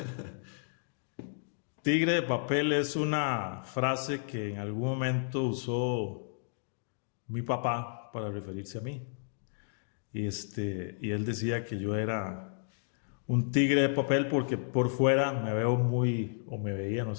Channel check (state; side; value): silent; right; digital silence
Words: Tigre de Papel es una frase que en algún momento usó mi papá para referirse a mí. Y él decía que yo era un tigre de papel porque por fuera me veo muy, o me veía, no